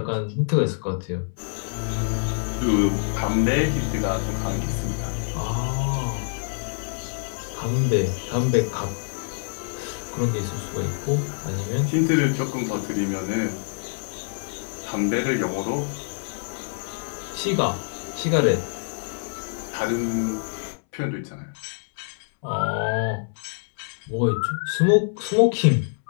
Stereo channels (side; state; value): right; silent; 61 dB below the other